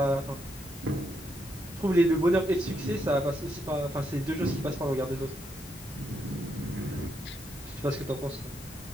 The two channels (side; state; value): left; noise; hiss, 19 dB below the sound